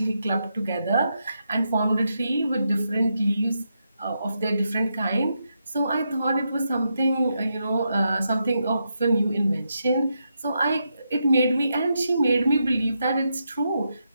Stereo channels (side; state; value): both; inverted; correlation -0.83